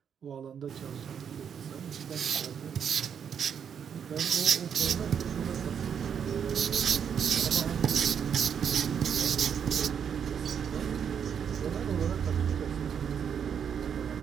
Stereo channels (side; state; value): left; quieter; 7.7 dB